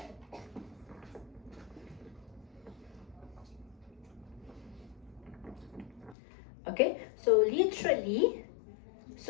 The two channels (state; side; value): drops out; right; at 6.2 s